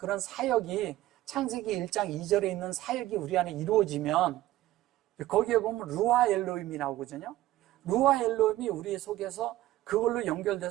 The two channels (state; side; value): quieter; left; 15.5 dB